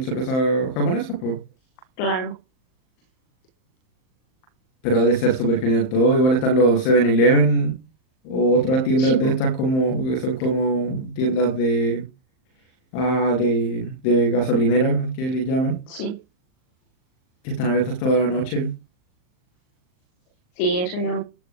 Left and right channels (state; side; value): late; right; 38 ms